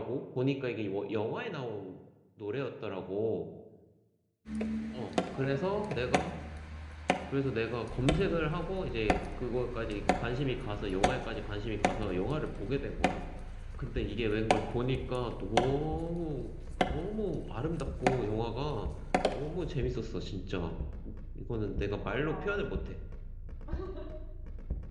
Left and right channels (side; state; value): both; identical; correlation 1.00